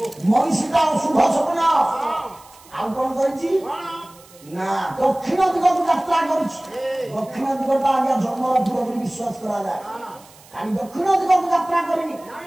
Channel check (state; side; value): noise; right; hiss, 25 dB below the sound